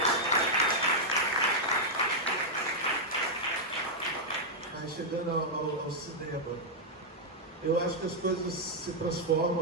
Mas chegando ao cinema, eu acho que as coisas se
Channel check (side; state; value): both; normal; correlation -0.04